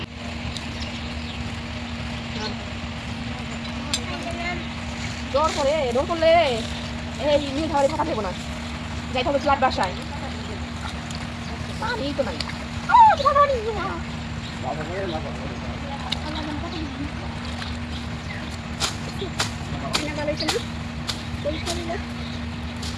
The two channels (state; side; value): identical; both; correlation 1.00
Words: ডর করলে এই নিয়ে ধারে থাকা দেবো না, যাইতে হবে ফ্ল্যাট বাসায়। পানি তো নাই।